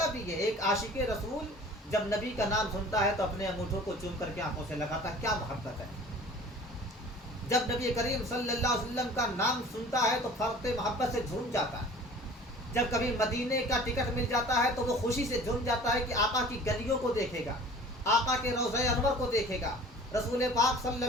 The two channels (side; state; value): both; normal; correlation 0.45